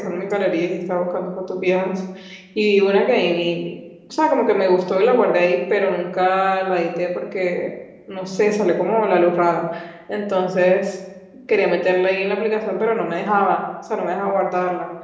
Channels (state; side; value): identical; both; correlation 1.00